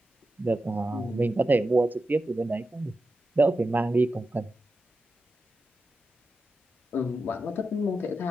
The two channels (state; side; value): normal; both; correlation 0.90